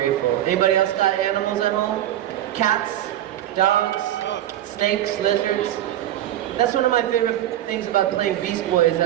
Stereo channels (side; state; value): left; quieter; 12.7 dB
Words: Anybody else got animals at home? Cats, dogs, snakes, lizards? That's one of my favorite things about playing Beast Boy is